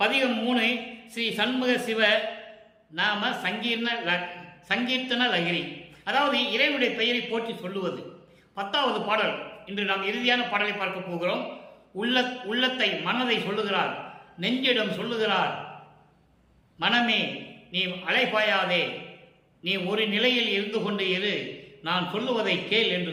3 ஸ்ரீ சண்முக சிவ நாம சங்கீர்த்தன லகிரி, அதாவது இறைவனுடைய பெயரை போற்றி சொல்லுவது. 10வது பாடல். இன்று நாம் இறுதியான பாடலை பார்க்க போகிறோம். உள்ளத்தை, மனதை சொல்லுகிறார், நெஞ்சிடம் சொல்லுகிறார். மனமே நீ அலைபாயாதே, நீ ஒரு நிலையில் இருந்து கொண்டு இரு, நான் சொல்லுவதை கேள் என்று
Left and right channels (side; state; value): both; identical; correlation 1.00